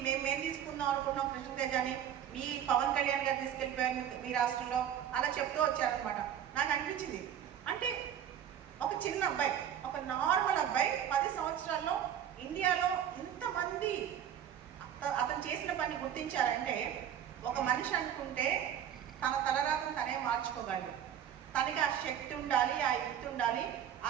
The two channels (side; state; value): left; quieter; 9.7 dB